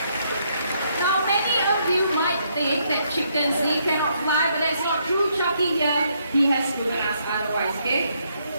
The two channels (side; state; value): both; inverted; correlation -0.73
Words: Now, many of you might think that chickens, they cannot fly, but that's not true. Chucky here, he has proven us otherwise, okay?